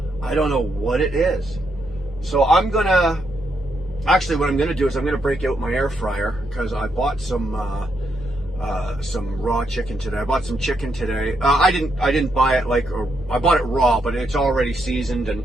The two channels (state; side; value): normal; both; correlation 0.79